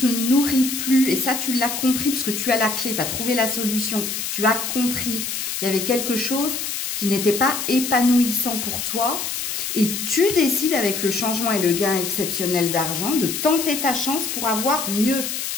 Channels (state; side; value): noise; left; hiss, 4 dB below the sound